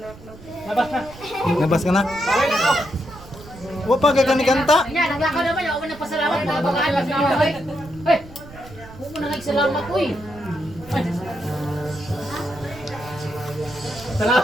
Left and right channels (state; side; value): noise; right; rumble, 18 dB below the sound